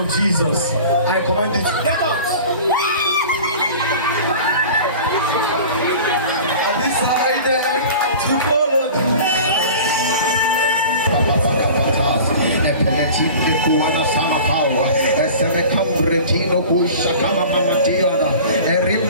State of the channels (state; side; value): inverted; both; correlation -0.39